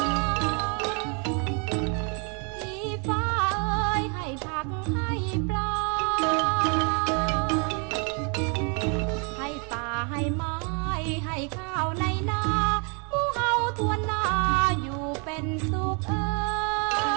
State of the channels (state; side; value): quieter; left; 36.8 dB